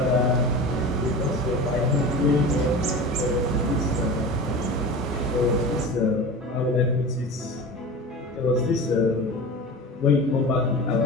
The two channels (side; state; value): both; normal; correlation 0.32